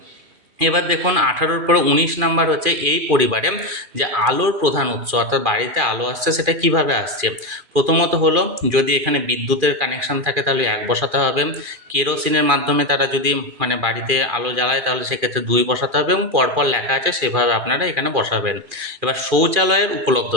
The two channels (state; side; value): late; left; 2.4 ms